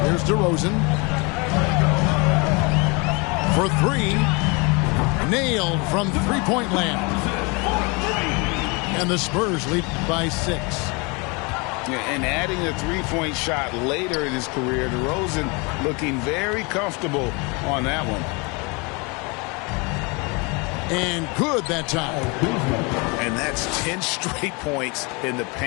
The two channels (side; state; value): right; quieter; 29.4 dB